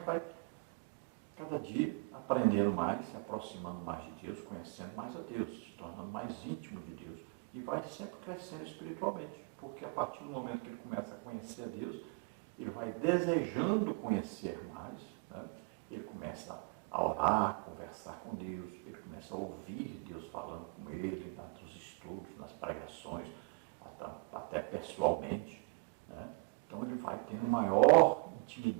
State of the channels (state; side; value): quieter; left; 32.3 dB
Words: vai cada dia aprendendo mais, se aproximando mais de Deus, conhecendo mais a Deus, se tornando mais íntimo de Deus, e vai sempre crescendo espiritualmente, porque a partir do momento que ele começa a conhecer a Deus, ele vai desejando conhecer mais, né? Ele começa a orar, conversar com Deus, ele começa a ouvir Deus falando com ele, nos estudos, nas pregações, até pessoalmente, né? Então ele vai tendo maior